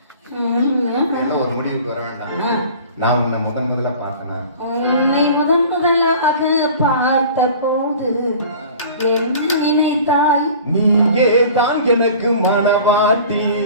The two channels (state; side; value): inverted; both; correlation -0.44